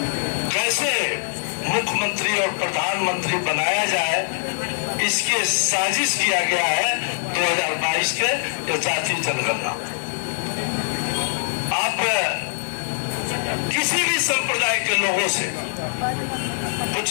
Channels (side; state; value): right; silent; digital silence